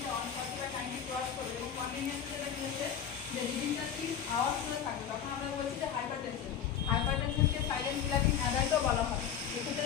140 বা 90 ক্রস করবে এবং কন্টিনিউয়াস যেটা কি হচ্ছে যে রিডিংটা 3 আওয়ার্স ধরে থাকবে, তখন আমরা বলছি যে হাইপারটেনশন। হাইপারটেনশনকে সাইলেন্ট কিলারিং অ্যাডাল্টও বলা হয়।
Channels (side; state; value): right; quieter; 8.5 dB